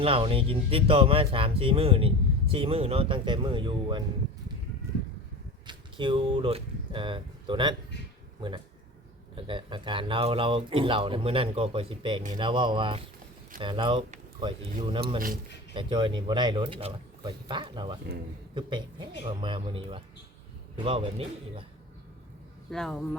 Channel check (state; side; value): normal; both; correlation 0.33